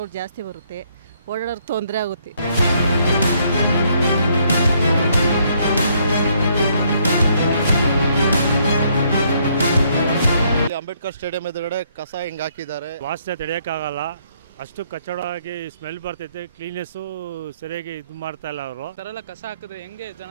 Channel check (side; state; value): both; inverted; correlation -0.69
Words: ಜಾಸ್ತಿ ಬರುತ್ತೆ, ಓಡಾಡೋರು ತೊಂದರೆ ಆಗುತ್ತೆ. ಅಂಬೇಡ್ಕರ್ ಸ್ಟೇಡಿಯಂ ಎದುರುಗಡೆ ಕಸ ಹಿಂಗೆ ಹಾಕಿದ್ದಾರೆ. ವಾಸನೆ ತಡೆಯೋಕ್ಕಾಗಲ್ಲ, ಅಷ್ಟು ಕಚ್ಚಡವಾಗಿ ಸ್ಮೆಲ್ ಬರ್ತೈತೆ. ಕ್ಲೀನೆಸ್ಸು ಸರಿಯಾಗಿ ಇದು ಮಾಡ್ತಾ ಇಲ್ಲ ಅವರು. ಥರ ಕಸ ಹಾಕಿದ್ರೆ ಹೆಂಗೆ ಜನ